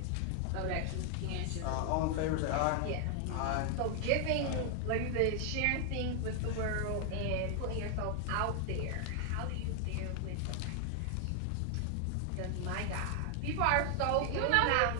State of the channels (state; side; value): different; both; correlation 0.00